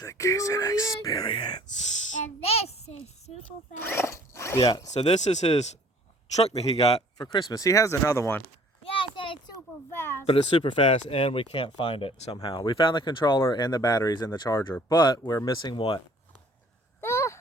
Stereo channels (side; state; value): both; normal; correlation 0.54